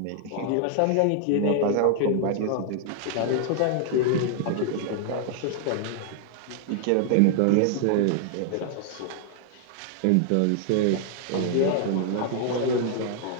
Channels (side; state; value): both; different; correlation 0.00